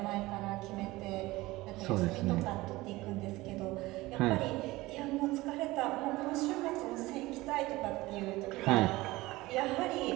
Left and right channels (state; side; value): quieter; left; 19.5 dB